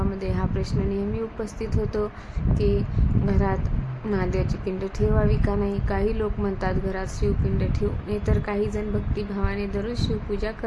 हा प्रश्न नेहमी उपस्थित होतो की घरात महादेवाची पिंड ठेवावी का नाही. काही लोक म्हणतात घरात शिवपिंड ठेवू नये, तर काही जण भक्तिभावाने दररोज शिवपूजा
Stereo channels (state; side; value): identical; both; correlation 1.00